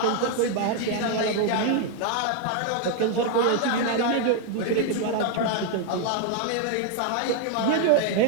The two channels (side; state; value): both; different; correlation 0.00